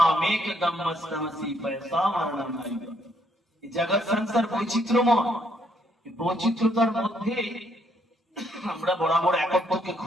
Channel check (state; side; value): normal; both; correlation 0.71